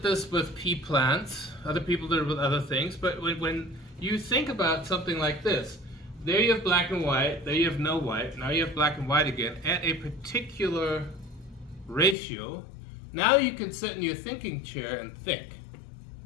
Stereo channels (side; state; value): right; drops out; at 12.2 s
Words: this with pea plants, other people did it with other things, but when you think about something like this, there you have black and white, there you have no white, now you have black and white again, at a particular ratio, now you can sit in your thinking chair and think.